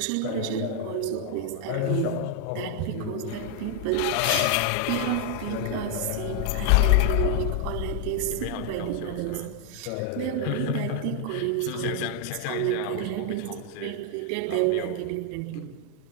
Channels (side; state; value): both; different; correlation 0.00